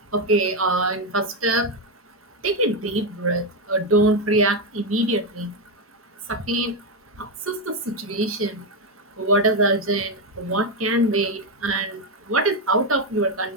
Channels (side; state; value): both; normal; correlation 0.07